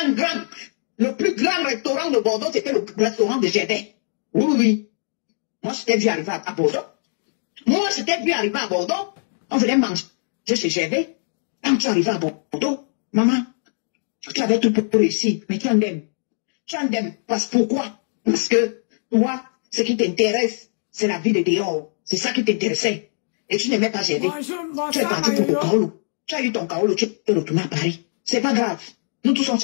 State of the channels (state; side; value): silent; right; digital silence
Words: Un grand. Le plus grand restaurant de Bordeaux, c'était le restaurant de Gédin. Oui. Moi, je t'ai vu arriver à Bordeaux. On venait manger chez Gervais. Quand tu arrives à Bordeaux, maman, tu avais tout pour réussir, mais tu en aimes. Tu en aimes. Pourquoi? Parce que toi, ce qui t'intéresse, c'est la vie de dehors. C'est ça qui t'intéressait. Et tu n'aimais pas Gervais. Tu es parti pour le Kaolo. Tu as eu ton Kaolo, tu es retourné à Paris. C'est pas grave. Nous tous on